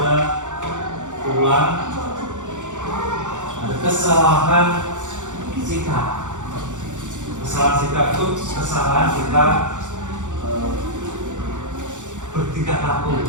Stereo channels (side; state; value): left; late; 0.85 ms